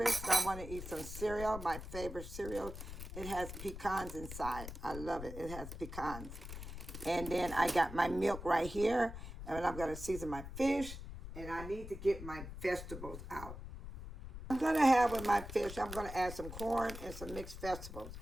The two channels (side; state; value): left; noise; rumble, 10 dB below the sound